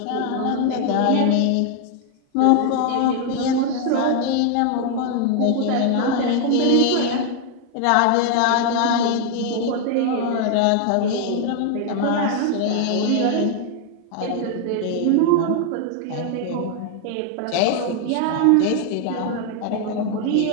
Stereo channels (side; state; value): both; different; correlation 0.00